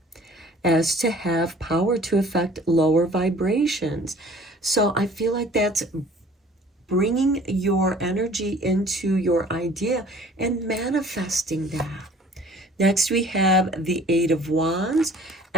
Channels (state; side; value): normal; both; correlation 0.51